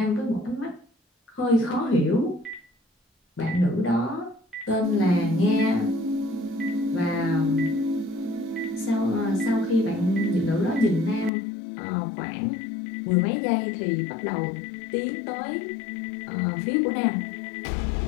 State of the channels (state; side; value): drops out; right; at 11.3 s